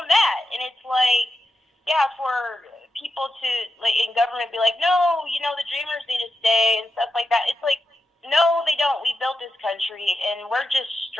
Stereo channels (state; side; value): normal; both; correlation 0.88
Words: that. And it's like, yeah, for people to like in government be like, no, you know, the dreamers need to stay and stuff like that. It's like, no, they don't. We built this country, and we're just